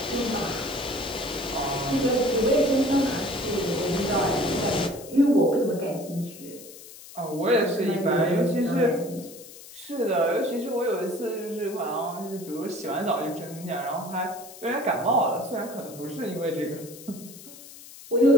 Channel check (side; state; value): left; noise; hiss, 17 dB below the sound